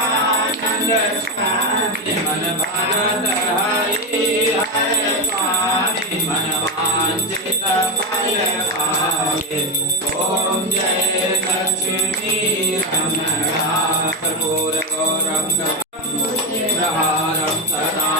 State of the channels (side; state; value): both; normal; correlation 0.12